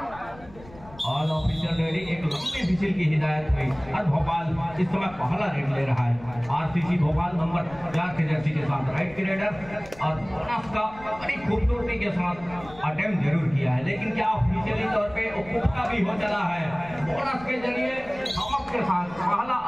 ऑल ऑफिशियल रेडी एक लंबी विजिल की हिदायत हुई और भोपाल इस समय पहला रेड ले रहा है। आरसीसी भोपाल नंबर 4 की जर्सी के साथ राइट की रेडर और बोनस का बड़ी खूबसूरती के साथ अटेम्प्ट जरूर किया है, लेकिन क्या ऑफिशियली तौर पे उपभोक्ता भी हो चला है। बोनस के जरिए चमक के साथ पहला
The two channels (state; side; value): noise; left; rumble, 20 dB below the sound